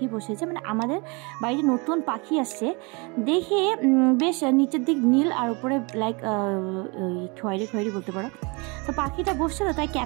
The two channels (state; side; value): quieter; left; 29.3 dB